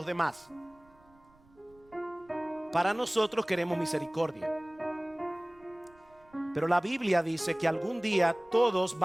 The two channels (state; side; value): noise; right; rumble, 30 dB below the sound